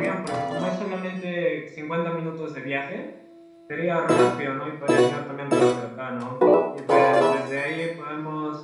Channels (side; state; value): both; identical; correlation 1.00